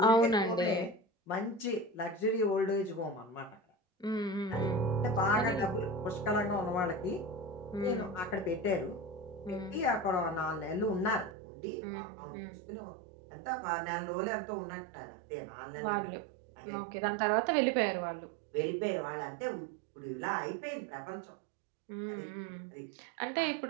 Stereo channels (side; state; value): left; drops out; at 11.4 s